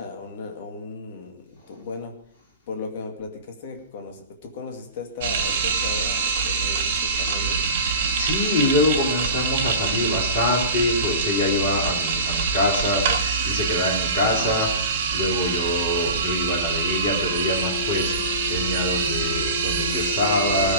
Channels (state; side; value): inverted; both; correlation -0.33